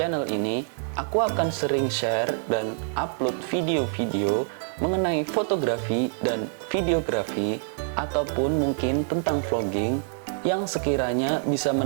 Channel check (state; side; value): silent; left; digital silence